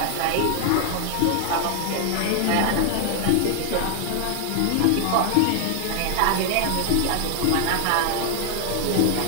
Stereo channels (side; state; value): both; different; correlation 0.00